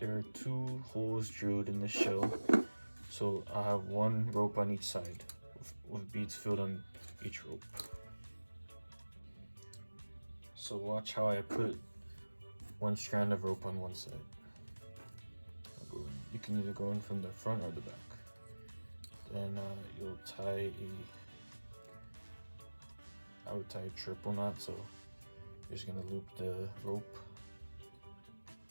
are 2 holes drilled in the shell, so I have 1 rope on each side with beads filled on each rope. So watch how I put 1 strand of rope on one side. You can either go in from the front or the back. Then you'll tie I would tie a triple knot, so you're just gonna loop the rope,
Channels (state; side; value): inverted; both; correlation -1.00